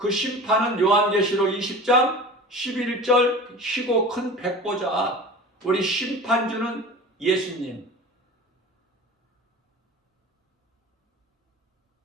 심판은 요한계시록 20장 11절 희고 큰 백보자, 우리 심판주는 예수님.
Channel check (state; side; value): normal; both; correlation 0.36